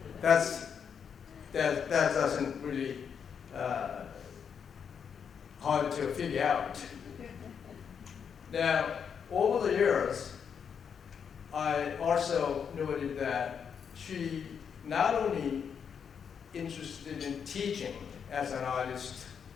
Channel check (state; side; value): quieter; right; 7.1 dB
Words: that doesn't really hard to figure out. Now, over the years, I also noted that she not only interested in teaching as an artist